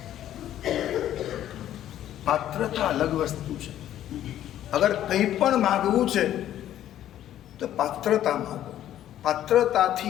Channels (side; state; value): right; quieter; 11.9 dB